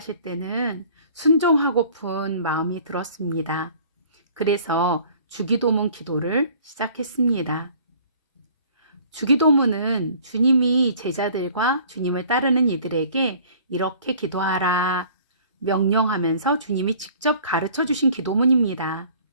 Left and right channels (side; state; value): both; inverted; correlation -0.52